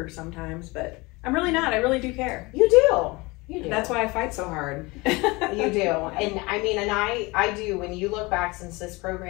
sometimes, but I'm really not. I really do care. You do. You do. That's why I fight so hard. You do. And I mean, and I do, when you look back since this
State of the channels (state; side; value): quieter; right; 24.3 dB